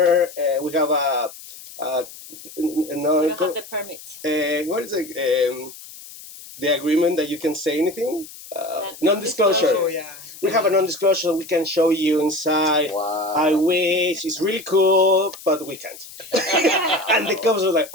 we have We don't have the permit. what is it? The agreement that you can say anything? Non-disclosure. Oh, yeah. We have a non-disclosure, so we can show you inside. Wow. I wish, it's really cool, but we can't. And the cops were like,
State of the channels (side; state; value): left; noise; hiss, 16 dB below the sound